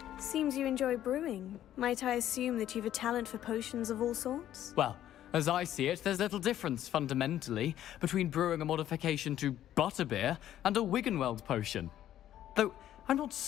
Seems you enjoy brewing. Might I assume that you've a talent for potions of all sorts? Well, as I see it, there's little difference, fundamentally, between brewing a modification to butterbeer and a Wiggenweld potion. Though, I'm not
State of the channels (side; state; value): right; quieter; 11.9 dB